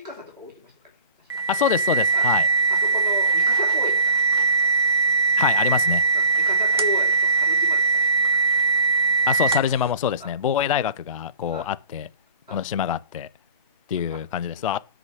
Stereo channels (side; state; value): both; inverted; correlation -0.48